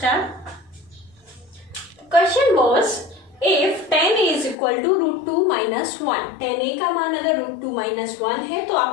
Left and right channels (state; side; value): drops out; right; at 4.5 s